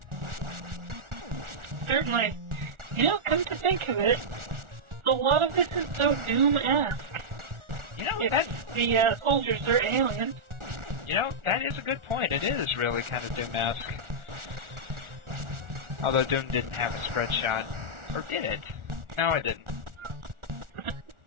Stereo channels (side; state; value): left; late; 1.4 ms